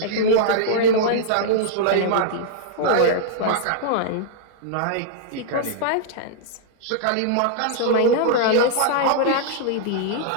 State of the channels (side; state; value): both; different; correlation -0.02